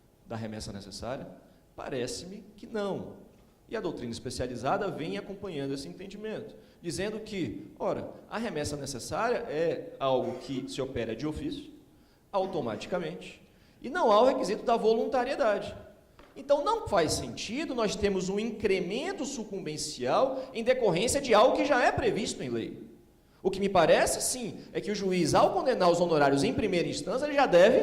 da remessa necessária? Parece-me que não. E a doutrina especializada vem acompanhando esse entendimento, dizendo que, ora, a remessa necessária é algo que se opera de ofício, automaticamente, e não há o requisito da voluntariedade. Então, não faz sentido nós termos um incremento sucumbencial em decorrência de algo que já é previsto em lei. O que me parece, sim, é que o juiz, ao condenar os honorários em primeira instância, ele já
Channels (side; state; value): both; identical; correlation 1.00